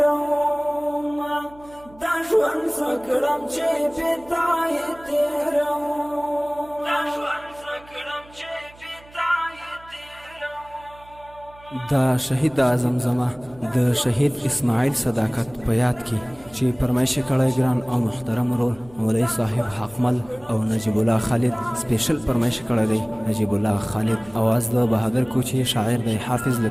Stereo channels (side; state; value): right; noise; hum, 24 dB below the sound